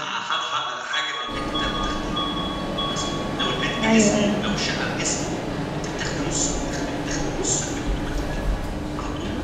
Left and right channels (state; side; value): identical; both; correlation 1.00